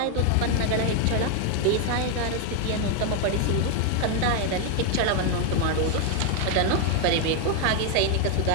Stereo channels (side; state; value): both; different; correlation 0.01